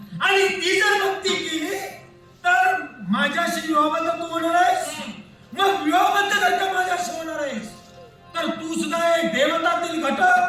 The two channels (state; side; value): identical; both; correlation 1.00